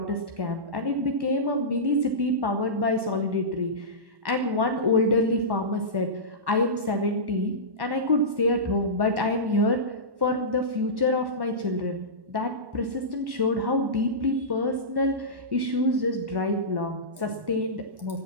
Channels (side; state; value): left; late; 1.1 ms